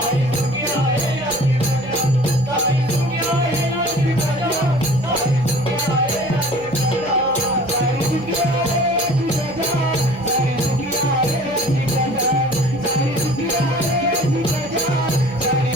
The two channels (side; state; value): right; noise; hum, 19 dB below the sound